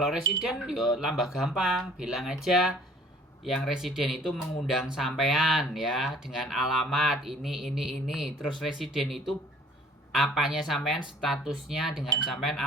residen yo tambah gampang, bilang aja yang residen itu mengundang sampean ya dengan alamat ini. Terus residen itu apanya sampean, statusnya dengan sampean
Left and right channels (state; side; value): normal; both; correlation 0.54